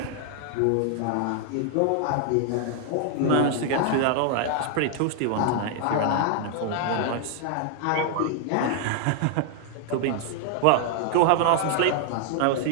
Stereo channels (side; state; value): both; different; correlation 0.00